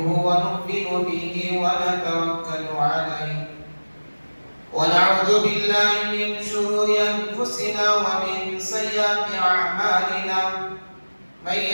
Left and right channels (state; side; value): inverted; both; correlation -1.00